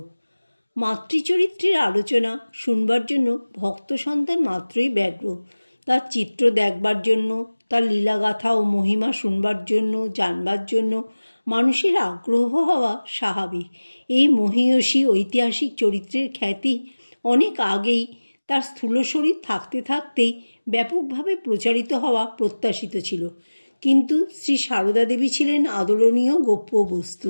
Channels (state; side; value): inverted; both; correlation -1.00